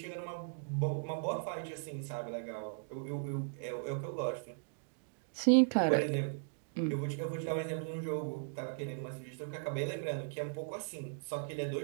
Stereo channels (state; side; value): silent; left; digital silence